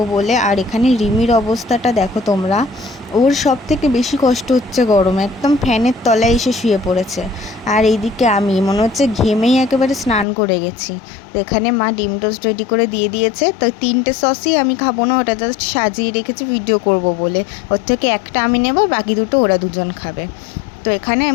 বলে। আর এখানে রিমির অবস্থাটা দেখো তোমরা, ওর সব থেকে বেশি কষ্ট হচ্ছে গরমে, একদম ফ্যানের তলায় এসে শুয়ে পড়েছে। আর এইদিকে আমি মনে হচ্ছে ঘেমেই একেবারে স্নান করে গেছি। তো এখানে মা ডিম টোস্ট রেডি করে দিয়ে দিয়েছে। তো 3টে সসই আমি খাবো না, ওটা জাস্ট সাজিয়ে রেখেছি ভিডিও করব বলে। ওর থেকে একটা আমি নেব, বাকি দুটো ওরা দুজন খাবে। তো এখানে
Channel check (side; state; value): right; drops out; at 10.2 s